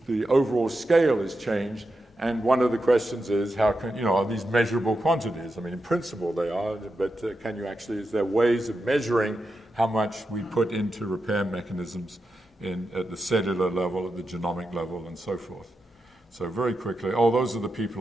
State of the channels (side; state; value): both; normal; correlation 0.88